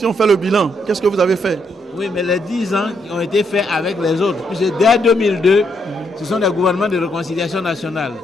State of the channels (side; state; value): both; normal; correlation 0.76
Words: on fait le bilan, qu'est-ce que vous avez fait? Oui, mais les 10 ans ont été faits avec les autres. Puisque dès 2002, ce sont des gouvernements de réconciliation nationale,